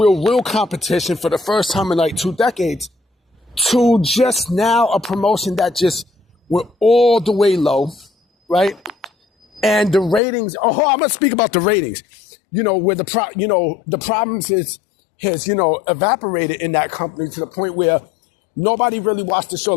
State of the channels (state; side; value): drops out; right; at 10.2 s